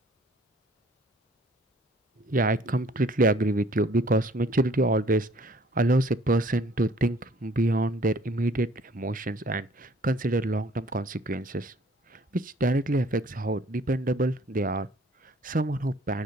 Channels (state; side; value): normal; both; correlation 0.56